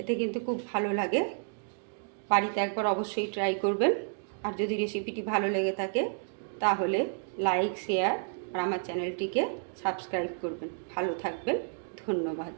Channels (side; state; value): left; silent; digital silence